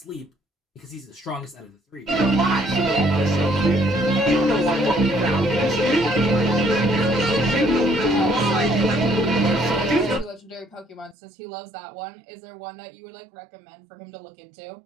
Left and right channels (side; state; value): left; drops out; at 11.2 s